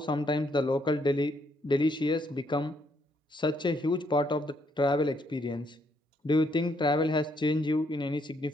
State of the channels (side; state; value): both; normal; correlation 0.72